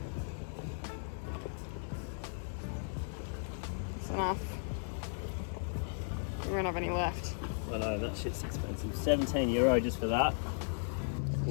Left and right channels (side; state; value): right; silent; digital silence